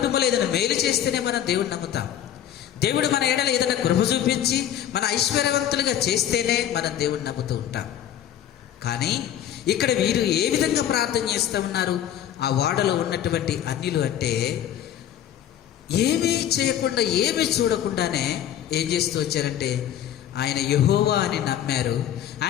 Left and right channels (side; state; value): right; quieter; 10.7 dB